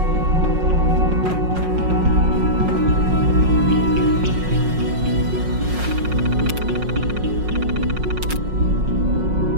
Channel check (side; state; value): left; late; 5.5 ms